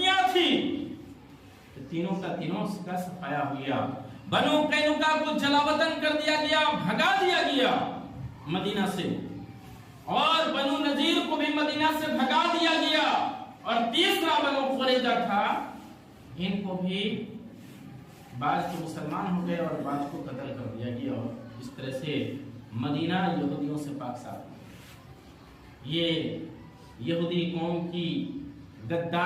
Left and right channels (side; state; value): both; identical; correlation 1.00